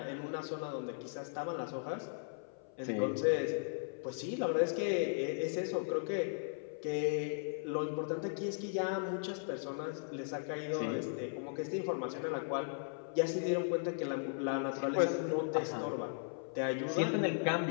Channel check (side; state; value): right; silent; 53 dB below the other